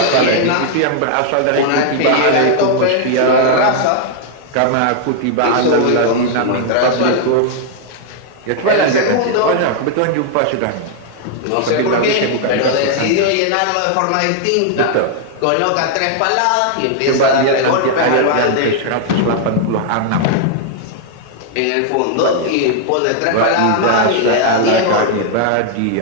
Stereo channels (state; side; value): different; both; correlation -0.01